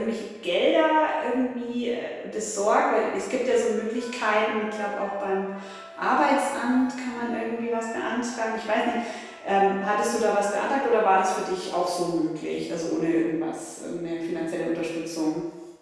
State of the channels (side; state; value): both; identical; correlation 1.00